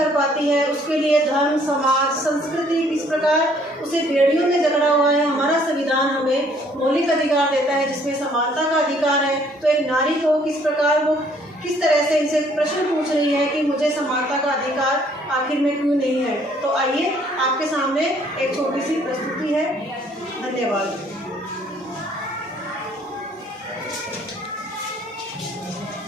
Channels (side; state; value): both; normal; correlation 0.62